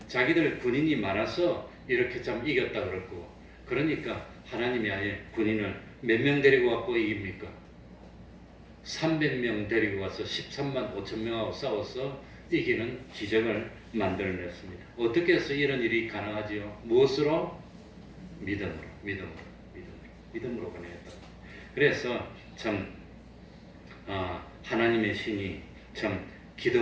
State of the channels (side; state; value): both; identical; correlation 1.00